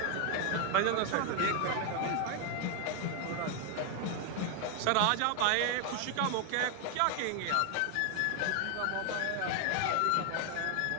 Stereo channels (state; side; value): different; both; correlation 0.01